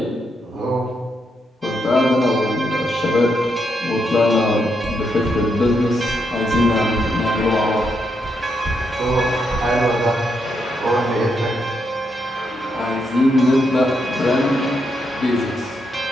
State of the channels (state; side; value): normal; both; correlation 0.80